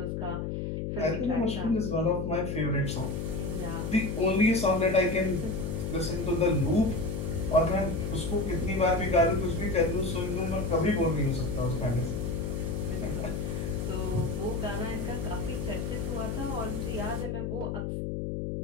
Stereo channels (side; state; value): left; noise; hum, 3 dB below the sound